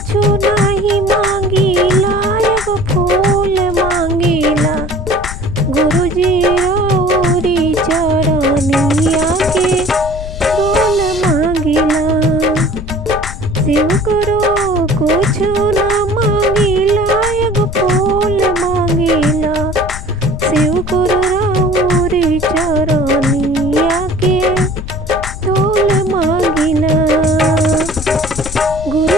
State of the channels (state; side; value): noise; left; rumble, 9 dB below the sound